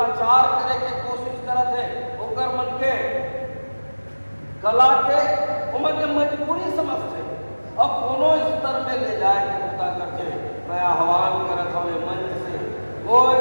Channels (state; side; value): inverted; both; correlation -1.00